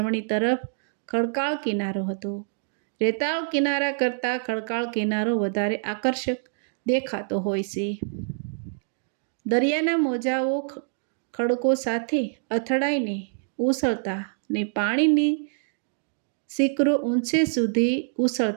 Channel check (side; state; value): left; silent; digital silence